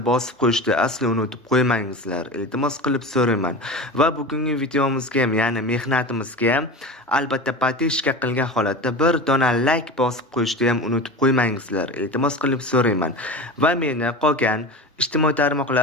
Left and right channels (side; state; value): both; normal; correlation 0.30